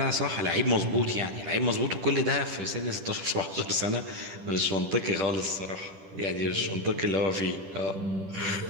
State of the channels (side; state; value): left; late; 10 ms